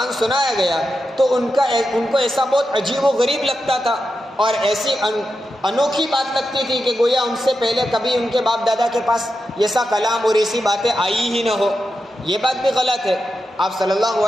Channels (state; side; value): normal; both; correlation 0.89